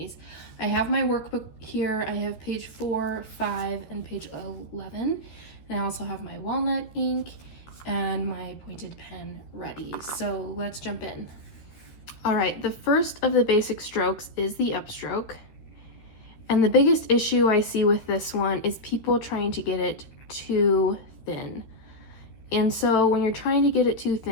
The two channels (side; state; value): right; late; 13 ms